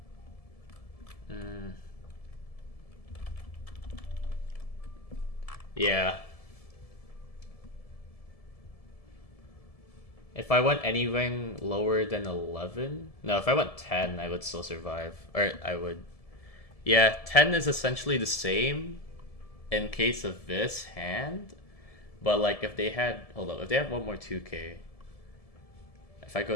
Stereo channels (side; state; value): right; late; 1.7 ms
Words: Yeah. If I went anything lower than 11... No, if I went 10, I would still survive. Or I would... Yeah, 10 is essentially the same in case of this hand. But like if they had... Hold up, if they have one more 2K... If I go